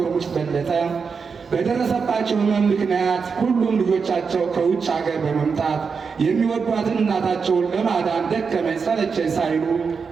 ሙጭት በለጠ በደረሰባቸው ሕመም ምክንያት ሁሉም ልጆቻቸው ከውጭ ሀገር በመምጣት የሚወዷትን እናታቸውን ለማዳን ደከመኝ ሰለቸኝ ሳይሉ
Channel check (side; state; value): left; quieter; 5.5 dB